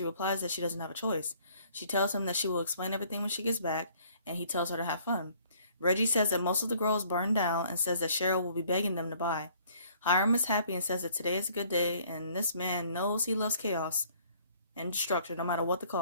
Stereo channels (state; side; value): inverted; both; correlation -0.59